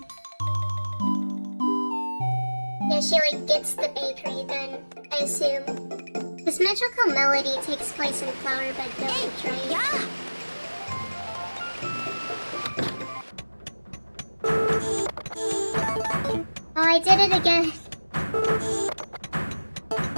Yeah, she like gets the bakery then, I assume. This Magical Melody takes place in Flowerbed Village, right? Yeah. Oh, I did it again.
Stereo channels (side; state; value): both; inverted; correlation -1.00